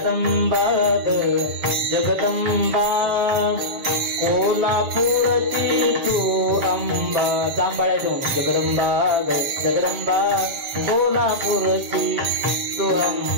जगदंबा कोल्हापूरची तू अंबा. जांभळ्या देऊ. जगदंबा जगदंबा कोल्हापूरची तू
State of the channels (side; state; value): left; late; 7.3 ms